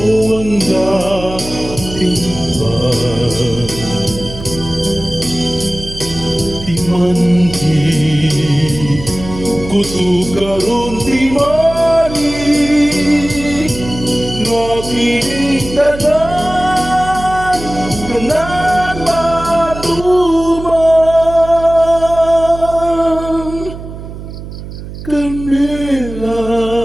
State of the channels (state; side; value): noise; right; hum, 11 dB below the sound